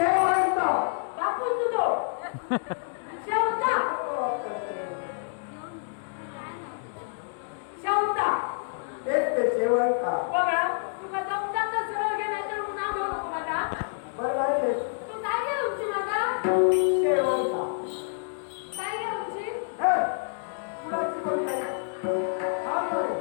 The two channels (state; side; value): silent; right; digital silence